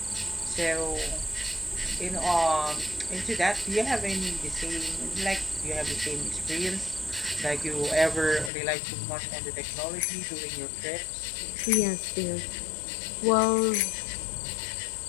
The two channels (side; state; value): right; drops out; at 8.5 s